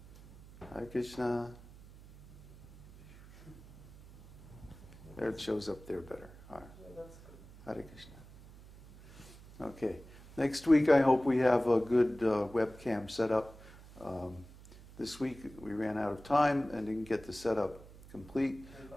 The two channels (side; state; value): right; noise; hum, 20 dB below the sound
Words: Hare Krishna. There it shows up there better. All right. Yeah, that's good. Hare Krishna. Okay. Next week, I hope we have a good webcam set up. This week, we ran out of time and didn't get the setup complete.